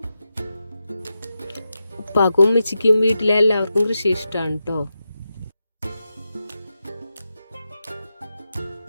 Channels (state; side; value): inverted; both; correlation -0.89